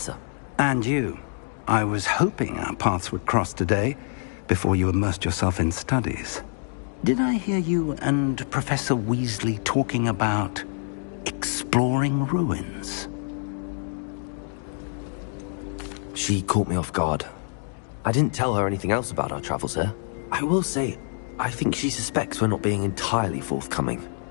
And you. I was hoping our paths would cross today, before you immersed yourself in studies. Did I hear you and Professor Weasley talking about exploring ruins? She caught me off guard. I didn't tell her anything else about our travels here. I will say, I think she suspects we're not being entirely forthcoming.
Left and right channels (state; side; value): silent; right; 61 dB below the other